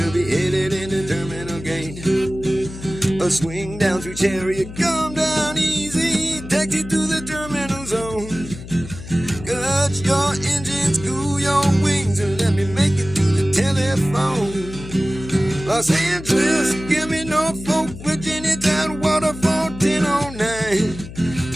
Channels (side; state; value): left; noise; hum, 13 dB below the sound